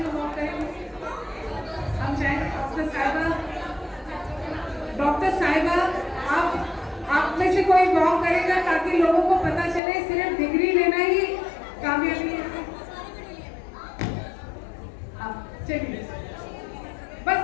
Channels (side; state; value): right; drops out; at 9.8 s